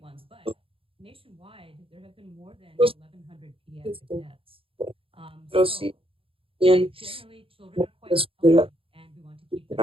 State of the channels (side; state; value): left; late; 0.27 ms